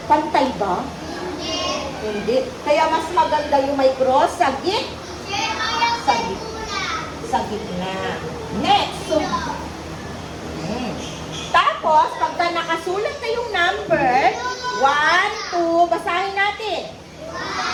pantay ba? Hindi. Kaya mas maganda yung may cross sa gitna. Next. So, tapos, pagka nakasulat na yung number, 1, 2, basahin natin.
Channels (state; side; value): identical; both; correlation 1.00